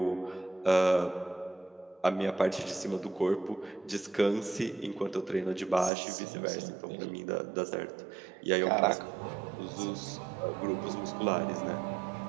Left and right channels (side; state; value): left; drops out; at 5.9 s